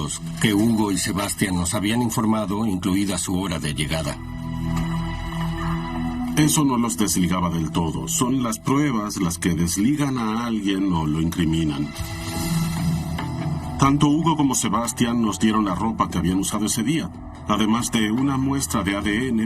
que Hugo y Sebastián nos habían informado, incluida su hora de llegada. Eso no los desligaba del todo. Son las pruebas las que desligan a alguien o lo incriminan. Tanto Hugo como Sebastián nos dieron la ropa que habían usado ese día, además de una muestra de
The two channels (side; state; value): both; identical; correlation 1.00